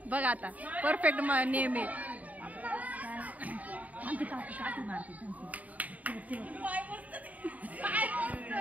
बघ आता परफेक्ट नेम आहे.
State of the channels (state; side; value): late; left; 0.073 ms